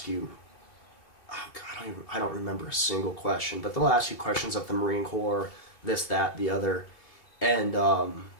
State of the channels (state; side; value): late; right; 2.8 ms